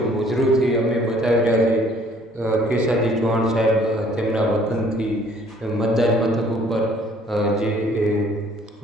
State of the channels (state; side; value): normal; both; correlation 0.58